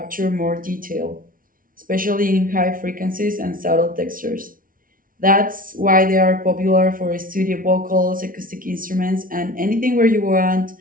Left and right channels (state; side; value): late; left; 0.40 ms